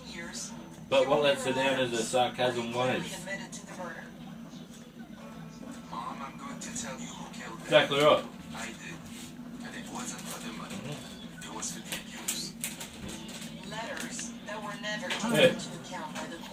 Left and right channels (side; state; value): both; identical; correlation 1.00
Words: But what lets her down is her sarcasm ways. Mom, I'm going to tell you who killed him. Exactly right. I did. And it wasn't for the money. It was for the abuse. Letters that were never Yeah. taken into account by the